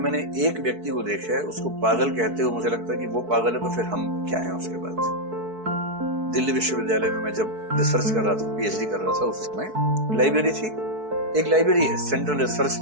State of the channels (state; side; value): late; left; 4.6 ms